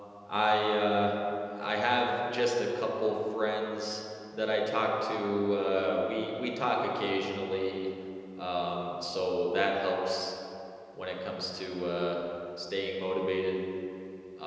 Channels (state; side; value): identical; both; correlation 1.00